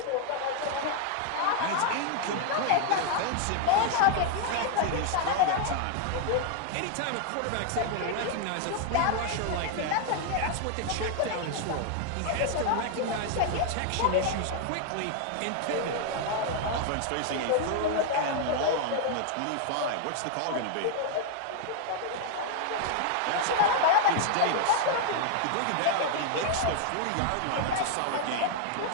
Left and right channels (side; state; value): both; different; correlation 0.00